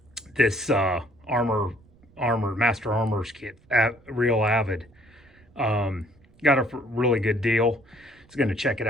this Master Armor's kit, real Avid, got a really good deal. Just gonna check it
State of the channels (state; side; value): noise; right; rumble, 29 dB below the sound